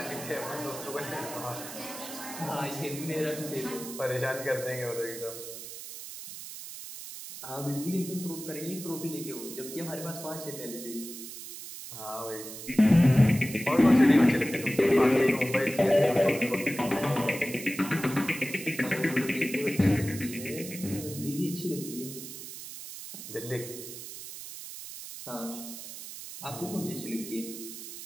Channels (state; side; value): noise; right; hiss, 11 dB below the sound